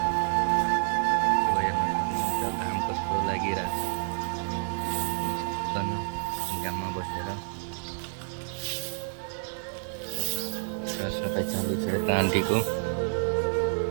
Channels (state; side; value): silent; left; digital silence